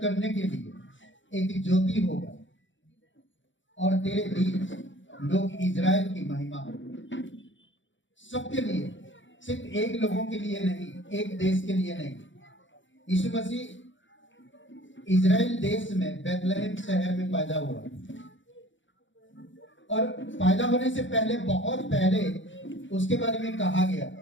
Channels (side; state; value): right; late; 0.55 ms